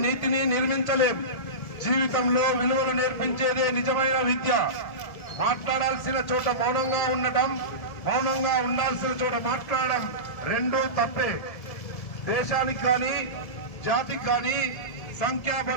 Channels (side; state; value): right; late; 1.7 ms